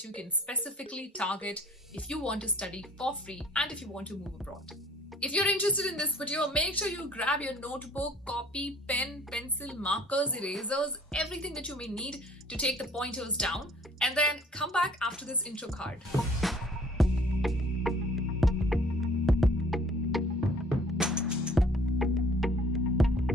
you can specifically target if you want to study for free and if you want to move abroad. If you're interested in this video, make sure you grab your notebook, copy, pen, pencil, markers, erasers, everything that you may need to take the pointers down, and then come back after this intro card.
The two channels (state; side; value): normal; both; correlation 0.53